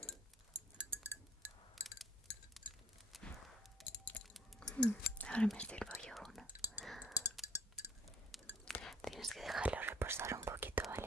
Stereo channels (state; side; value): normal; both; correlation 0.59